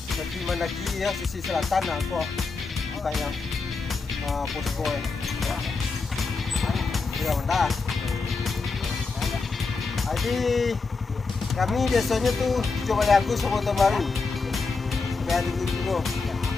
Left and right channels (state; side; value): quieter; right; 4.3 dB